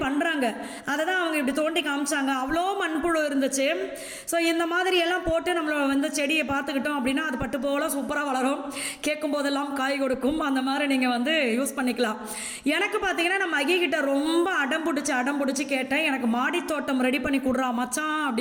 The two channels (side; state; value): both; identical; correlation 1.00